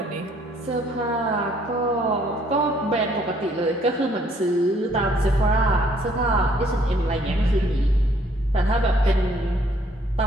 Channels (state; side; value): normal; both; correlation 0.64